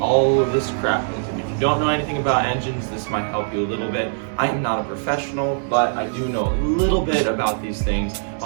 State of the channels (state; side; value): silent; left; digital silence